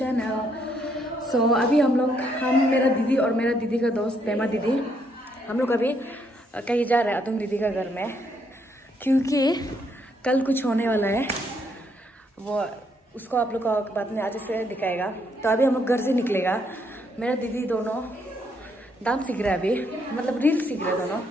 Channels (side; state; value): both; normal; correlation 0.73